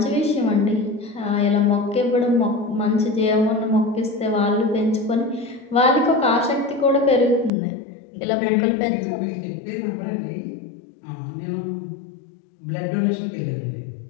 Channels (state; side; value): drops out; right; at 7.5 s